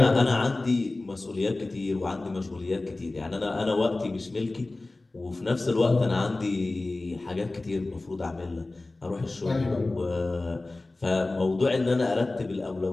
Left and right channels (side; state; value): right; quieter; 3.0 dB